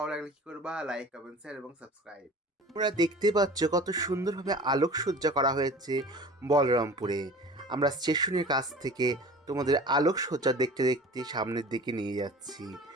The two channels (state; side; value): normal; both; correlation 0.41